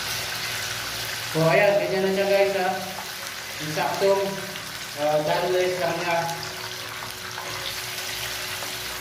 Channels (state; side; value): identical; both; correlation 1.00